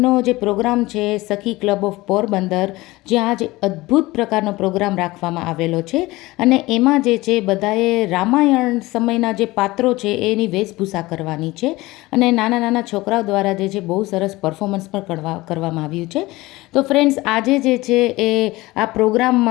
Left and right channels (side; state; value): right; quieter; 20.0 dB